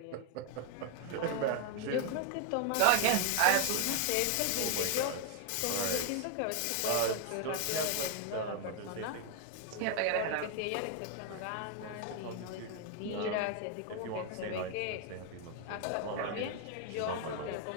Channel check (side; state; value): both; different; correlation 0.00